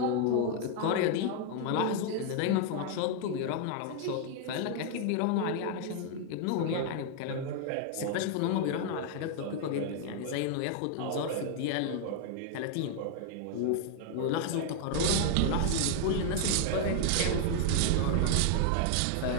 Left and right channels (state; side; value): different; both; correlation 0.00